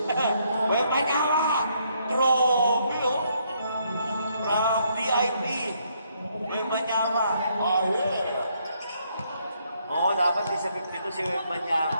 May panyawa! Grabe, oh! From DIP. May panyawa. Oh, yeah. Oo, dapat di sa 52 si Web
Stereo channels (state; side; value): inverted; both; correlation -0.72